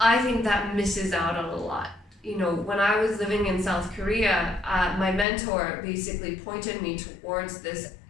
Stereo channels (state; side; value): drops out; right; at 5.2 s